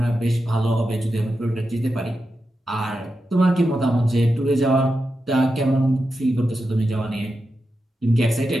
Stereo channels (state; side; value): normal; both; correlation 0.89